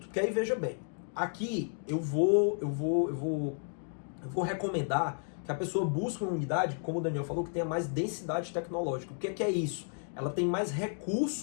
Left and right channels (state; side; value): silent; right; 56 dB below the other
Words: que aí veja bem, aqui eu vou recomendar que a pessoa busque uma unidade, como o Daniel falou, que tenha mais densidade tecnológica. O que é isso? Ela tem mais